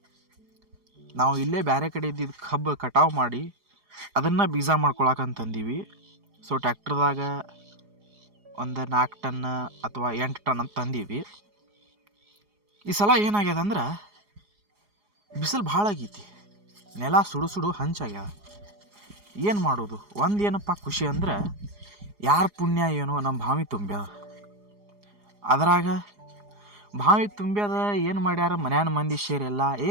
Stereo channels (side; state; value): left; late; 4.8 ms